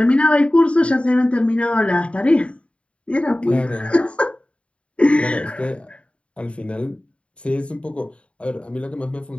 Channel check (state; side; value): late; right; 0.060 ms